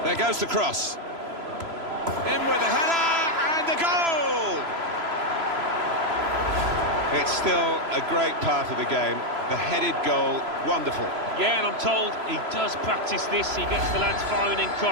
There goes the cross. In with the header and a goal! It's still a great part of the game. The headed goal, wonderful. Yeah, and I'm told he does practice this. He gets the lads firing in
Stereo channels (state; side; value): late; left; 3.0 ms